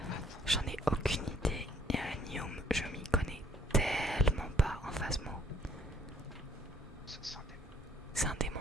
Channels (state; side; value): normal; both; correlation 0.63